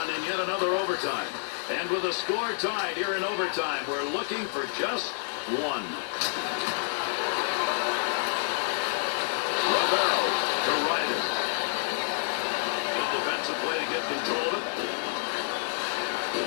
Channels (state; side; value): silent; right; digital silence